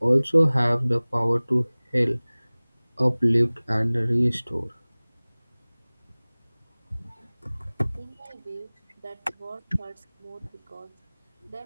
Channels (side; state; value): both; inverted; correlation -1.00